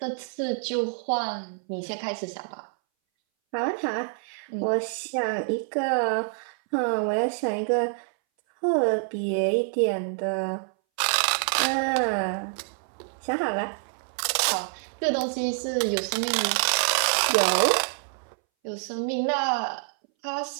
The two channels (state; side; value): silent; left; 60 dB below the other